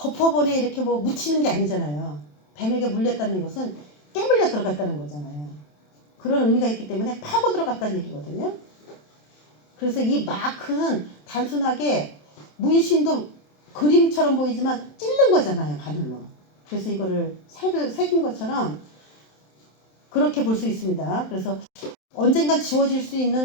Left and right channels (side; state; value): right; late; 27 ms